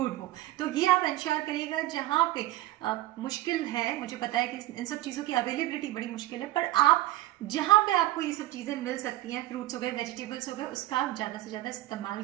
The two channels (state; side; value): quieter; left; 15.9 dB